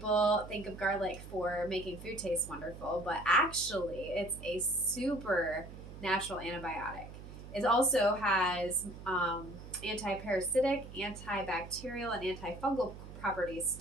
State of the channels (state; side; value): noise; right; hum, 13 dB below the sound